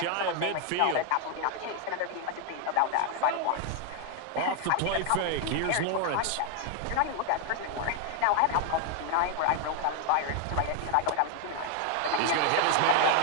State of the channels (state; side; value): different; both; correlation 0.01